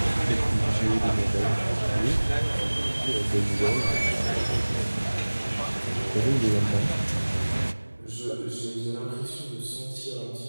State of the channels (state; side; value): inverted; both; correlation -1.00